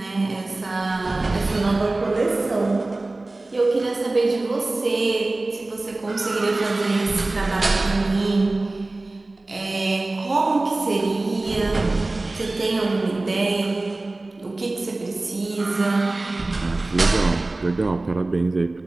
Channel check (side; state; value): left; quieter; 3.0 dB